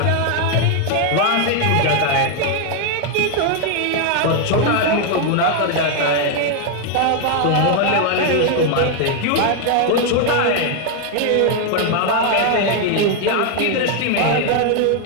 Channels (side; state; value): both; different; correlation 0.00